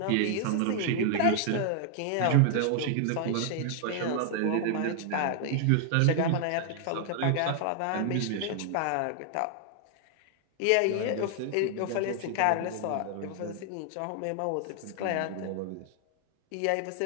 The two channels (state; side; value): different; both; correlation 0.00